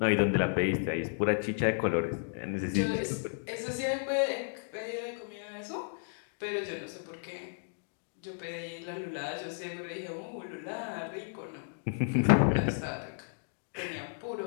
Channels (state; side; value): silent; right; digital silence